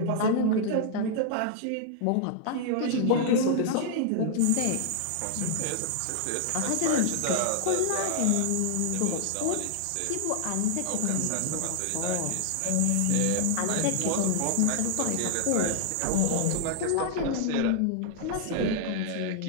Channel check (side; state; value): both; different; correlation -0.01